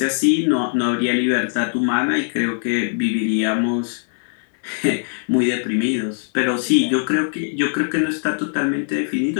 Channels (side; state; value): right; silent; 65 dB below the other